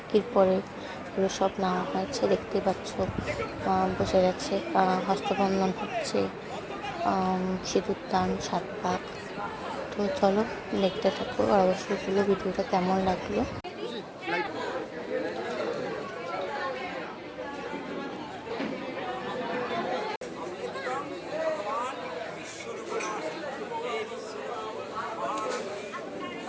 পরে এগুলো সব নেওয়া হয়েছে। দেখতেই পাচ্ছ বসে গেছে, হস্তবন্ধন হচ্ছে, সিঁদুর দান, 7 পাক। তো চলো দেখতে থাকো, আর অবশ্যই বলো ভিডিওটা কেমন লাগলো।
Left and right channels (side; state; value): both; identical; correlation 1.00